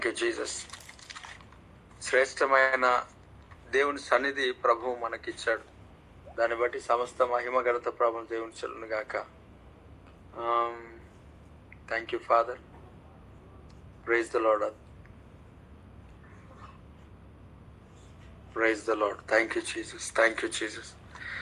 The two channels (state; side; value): identical; both; correlation 1.00